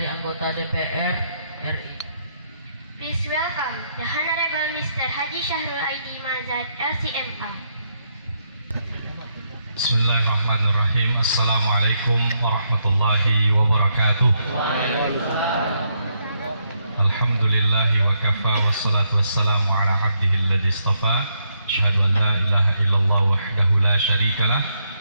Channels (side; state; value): both; inverted; correlation -0.77